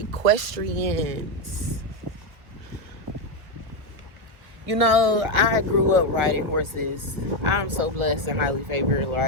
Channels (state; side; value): late; left; 1.7 ms